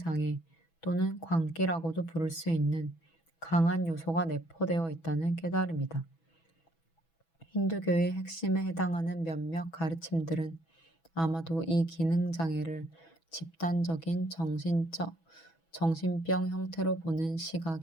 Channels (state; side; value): late; right; 6.1 ms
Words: 또는 광기라고도 부를 수 있는 강한 요소가 내포되어 있다는 깨달음이다. 힌두교의 핵심에 해당하는 몇몇 가르침들은 아마도 이 기능장애를 집단적인 정신병 형태로 보는